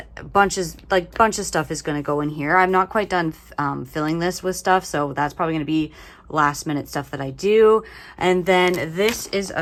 bunch of stuff is going to go in here. I'm not quite done filling this with stuff, so that's probably going to be last minute stuff that I do. And then this is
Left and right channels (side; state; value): both; identical; correlation 1.00